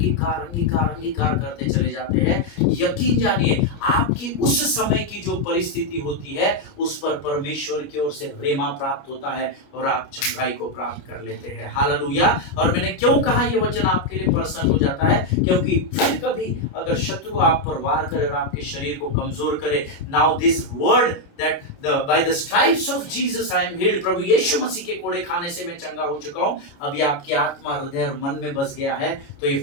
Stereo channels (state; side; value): late; right; 29 ms